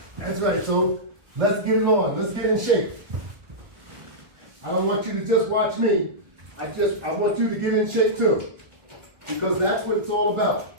That's right, so let's get it on, let's get in shape. I don't want you to just watch me. I want you to get in shape too. Because that's what it's all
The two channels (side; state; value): left; late; 1.4 ms